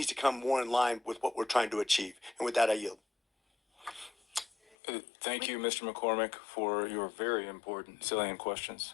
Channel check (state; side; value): drops out; right; at 4.8 s